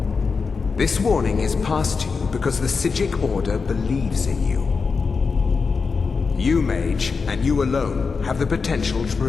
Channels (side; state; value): right; quieter; 4.9 dB